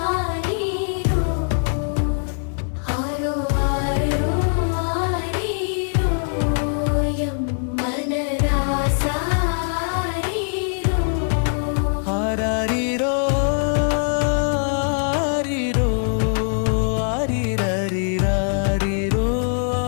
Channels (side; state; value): right; silent; 63 dB below the other